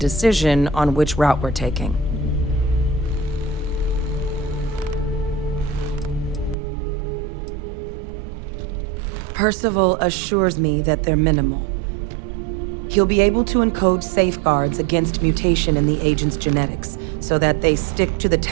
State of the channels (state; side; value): drops out; left; at 6.6 s